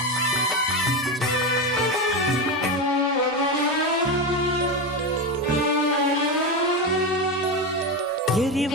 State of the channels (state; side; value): normal; both; correlation 0.16